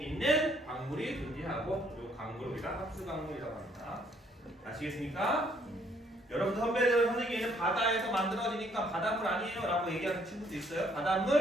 광물이 존재하고, 이 광물을 우리가 합수 광물이라고 합니다. 아시겠습니까? 여러분들 선생님은 바다에서 만들어지니까 바닷물 아니에요 라고 얘기하는 친구도 있어요.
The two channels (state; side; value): normal; both; correlation 0.66